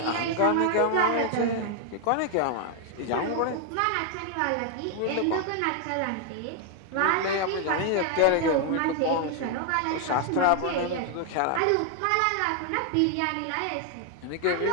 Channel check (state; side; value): different; both; correlation 0.00